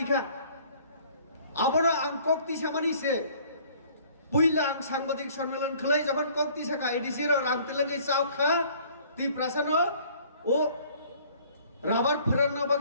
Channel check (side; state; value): both; inverted; correlation -0.55